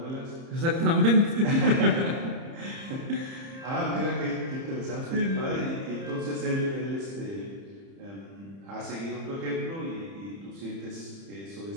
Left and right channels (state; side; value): late; left; 30 ms